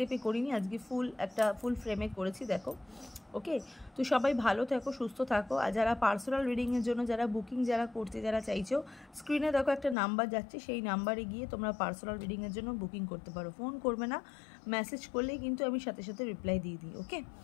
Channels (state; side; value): drops out; right; at 10.0 s